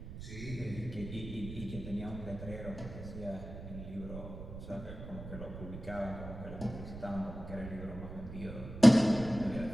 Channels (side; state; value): right; noise; rumble, 11 dB below the sound